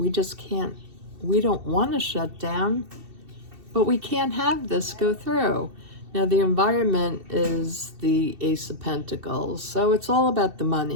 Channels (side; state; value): left; late; 2.7 ms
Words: just can't, we don't want to shut down, but we can't have this go through. Now, the environment is the Ace of Pentacles, so it's all about the